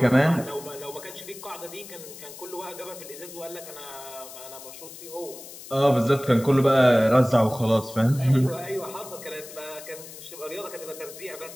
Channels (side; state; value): left; noise; hiss, 15 dB below the sound